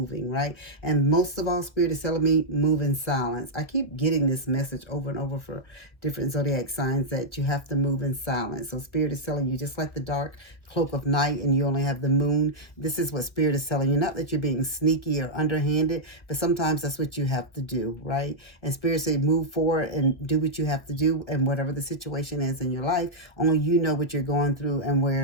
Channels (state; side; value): late; right; 1.3 ms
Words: right? And most of all, Spirit is telling me, move in silence. I keep getting this message over and over for different zodiac signs that you have to move in silence. So Spirit is telling you, just like the dark cloak of night and you only have the Moon, this is what Spirit is telling you. Not that you're being sneaky or underhanded, but sometimes that's what you have to do, right? And Spirit say move forward and do what you have to do, and whatever the situation is in your life, only you know what you're going through and